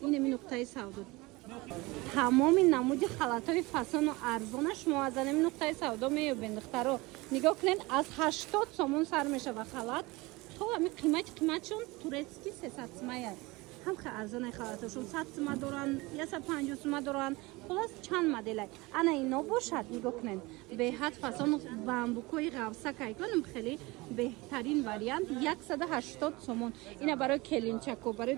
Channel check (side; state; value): left; quieter; 22.8 dB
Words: Инами нуқтаи савдо. Тамоми намуди халатҳои фасону арзона шумо аз анами нуқтаи савдо меёбед духтаро. Нигоҳ кунед, аз 80 сомон сар мешава халат. То ҳами қиматшон турецки 300 сомаяд. Ҳам хе арзонай халатошон 100 сома доран, 150 сома доран. Хулос чанд моделай. Ана ино бошад, нигоҳ кунед. Беҳад фасон бамбукои ғавсакай конам хеле беҳтарин вариант 180 сомон. Ина барои келинчако, барои